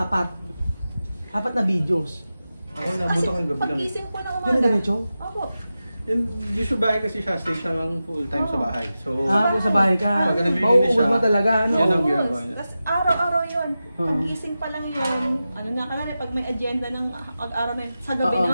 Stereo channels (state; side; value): inverted; both; correlation -0.93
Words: apat na videos? Ako, nabuto ko yung gabi lang. Pag-gising ko ng Yun na umaga. ganito? Opo. Usually bahay kasi siya, stay siya lang full time sa bahay. So, Po sa bahay ka. Pag nabibili Mauubos siya, mo talaga, ano? yan ang Yes. ginagawa niya. Tapos araw-araw yun. Pag-gising pa lang yun. Ano na ka na, pag may agenda ng pag-araw na sa gabi